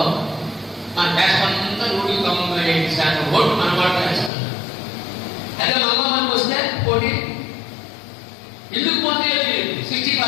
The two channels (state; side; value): drops out; right; at 4.3 s